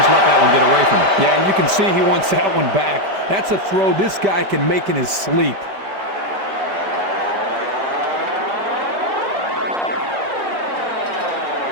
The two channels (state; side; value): late; left; 5.1 ms